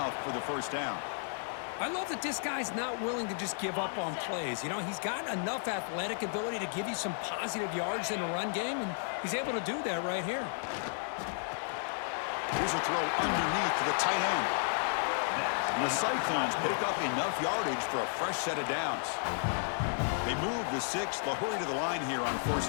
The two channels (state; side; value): silent; right; digital silence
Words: for the first down. I love that this guy's not willing to just give up on plays. You know, he's got enough athletic ability to give you some positive yards in the run game, and he's able to do that right here. Here's a throw underneath to the tight end. And the Cyclones pick up enough yardage for a fresh set of downs. They move the 6th. They'll hurry to the line here on